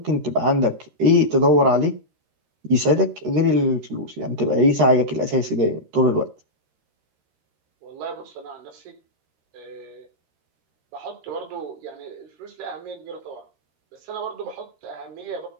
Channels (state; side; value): late; left; 13 ms